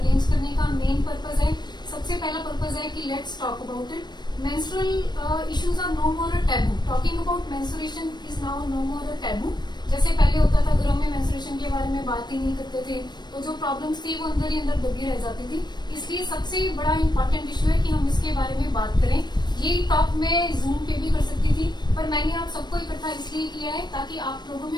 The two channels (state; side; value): late; right; 0.21 ms